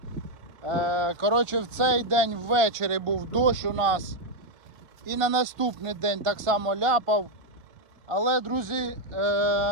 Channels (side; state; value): left; late; 1.5 ms